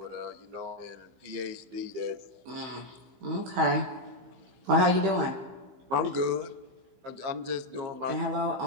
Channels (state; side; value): late; left; 15 ms